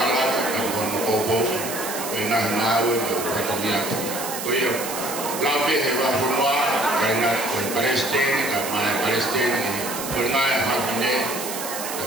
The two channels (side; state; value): right; noise; hiss, 7 dB below the sound